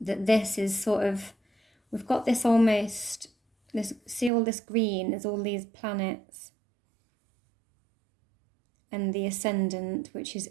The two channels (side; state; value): left; drops out; at 4.3 s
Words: this is sort of, we've got this almost, see all this green, there's all these planets and the ascendant, which is